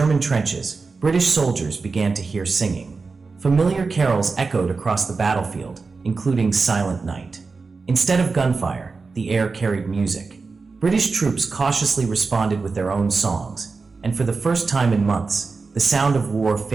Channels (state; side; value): quieter; left; 4.3 dB